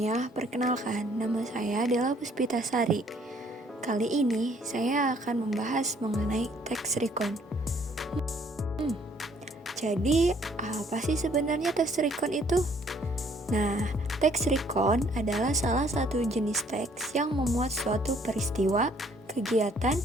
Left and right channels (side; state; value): both; normal; correlation 0.62